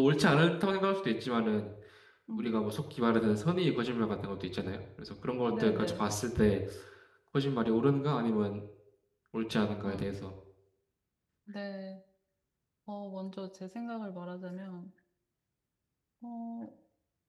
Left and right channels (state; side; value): identical; both; correlation 1.00